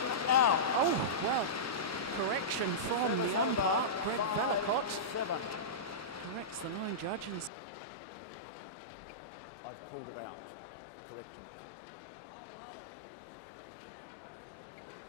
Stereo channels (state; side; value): drops out; right; at 7.5 s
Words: out. Oh, well, correction from the umpire, Greg Velicott. 7. Corrects the line judge and says no, it was out. Wouldn't mind seeing that again. Well, the Chinese players aren't happy. No,